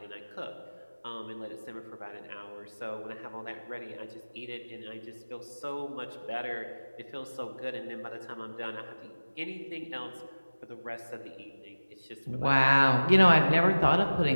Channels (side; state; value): both; inverted; correlation -1.00